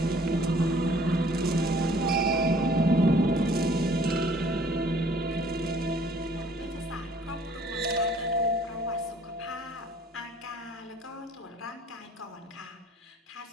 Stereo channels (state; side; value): normal; both; correlation 0.56